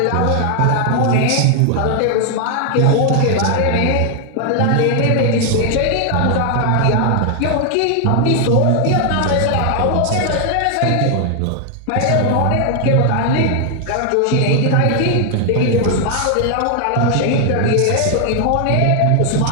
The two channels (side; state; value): both; different; correlation 0.00